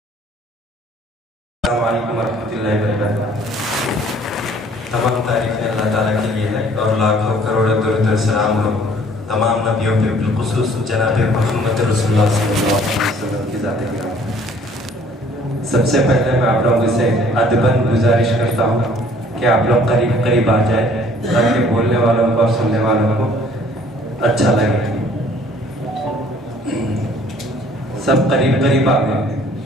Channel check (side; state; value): both; normal; correlation 0.56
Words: السلام علیکم ورحمۃ اللہ وبرکاتہ۔ تمام تعریفیں اللہ تعالیٰ کے لیے ہے اور لاکھوں کروڑوں درود و سلام ہو تمام نبیوں پہ، بالخصوص جناب محمد رسول اللہ صلی اللہ علیہ وسلم کی ذات گرامی۔ سب سے پہلے میں آپ لوگوں سے ادباً گزارش کرتا ہوں کہ آپ لوگ قریب قریب آ جائیں تاکہ بولنے والوں کو اور سننے والوں کو اچھا لگے۔ سب قریب قریب آ گئے،